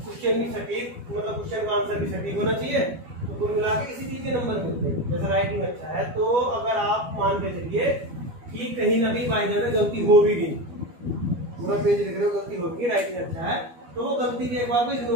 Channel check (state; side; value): late; left; 12 ms